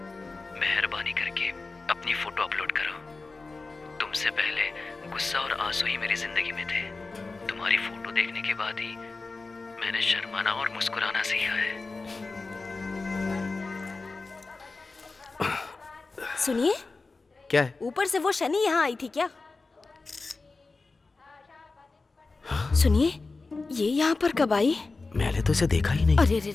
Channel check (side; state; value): right; quieter; 3.8 dB